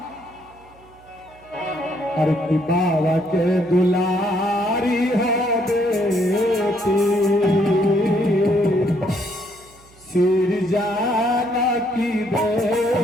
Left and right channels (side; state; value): right; noise; hum, 27 dB below the sound